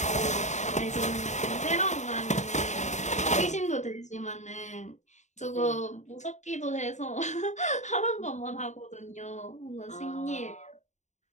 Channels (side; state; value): right; late; 0.34 ms